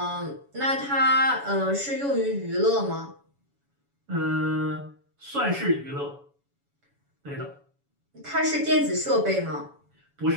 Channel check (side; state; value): left; late; 7.1 ms